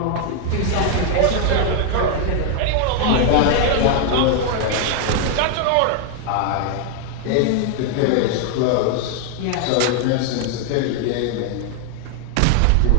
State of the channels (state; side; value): different; both; correlation 0.00